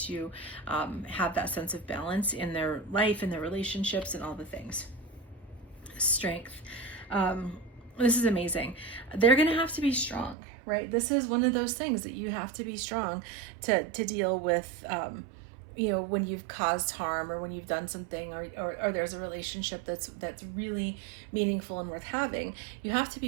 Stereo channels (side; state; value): left; drops out; at 10.4 s